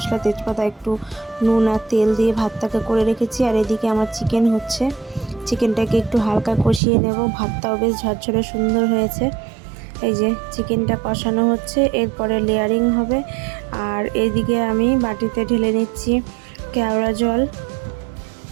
তেজপাতা, একটু নুন আর তেল দিয়ে ভাতটাকে করে রেখেছি। আর এদিকে আমার চিকেন হচ্ছে, চিকেনটাকে একটু হালকা কষিয়ে নেব। ভাতটাও বেশ ঝরঝরে সুন্দর হয়েছে। এই যে চিকেনটা কষানো হচ্ছে, এরপরে লেয়ারিং হবে। আর এদিকে আমি বাটিতে ঢেলে নিচ্ছি কেওড়া জল,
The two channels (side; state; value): left; drops out; at 6.8 s